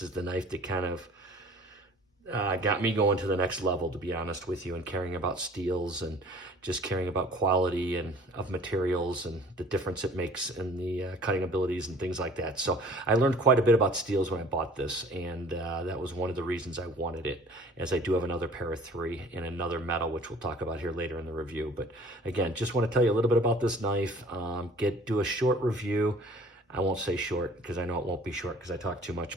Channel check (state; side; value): normal; both; correlation 0.50